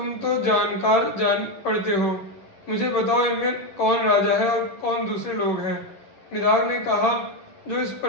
तो जानकार जान पड़ते हो, मुझे बताओ इनमें कौन राजा है और कौन दूसरे लोग हैं? निदाग ने कहा, जो इस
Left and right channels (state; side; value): late; right; 11 ms